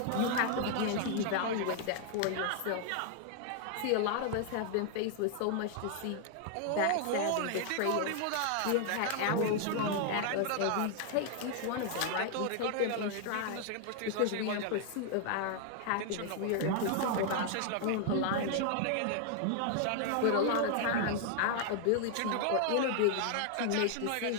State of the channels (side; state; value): both; different; correlation 0.00